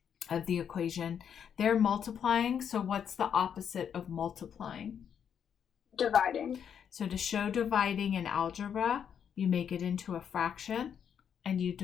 of the equation. They're multiplying, so what's the opposite of multiplying? Dividing. So to show dividing in algebra, you make it into a fraction and you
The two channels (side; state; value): right; quieter; 8.1 dB